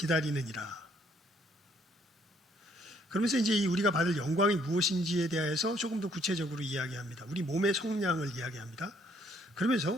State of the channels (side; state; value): both; normal; correlation 0.66